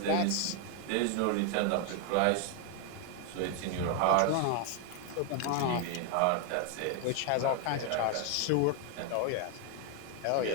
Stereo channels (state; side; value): different; both; correlation 0.00